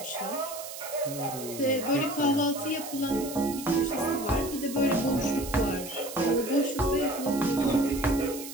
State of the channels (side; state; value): right; noise; hiss, 11 dB below the sound